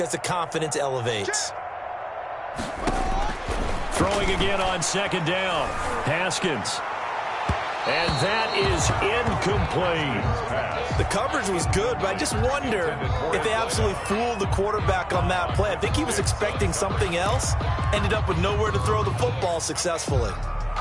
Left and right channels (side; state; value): both; identical; correlation 1.00